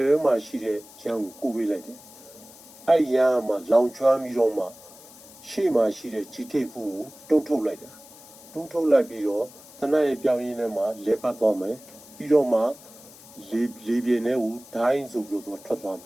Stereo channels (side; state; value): left; noise; hiss, 20 dB below the sound